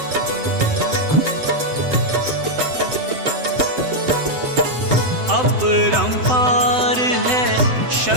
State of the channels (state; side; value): late; left; 7.8 ms